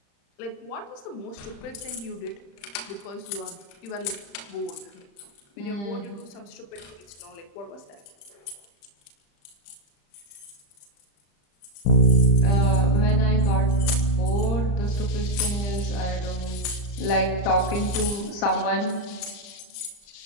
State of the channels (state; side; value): late; right; 35 ms